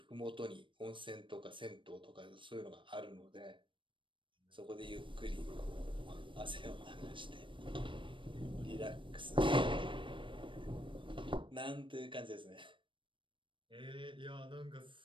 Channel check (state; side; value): late; left; 0.24 ms